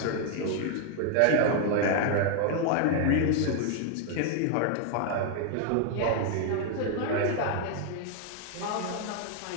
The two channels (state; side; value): different; both; correlation 0.00